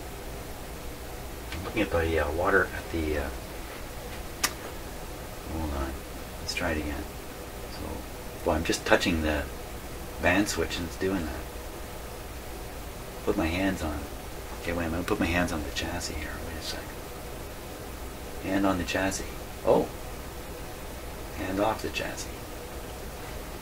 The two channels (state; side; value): identical; both; correlation 1.00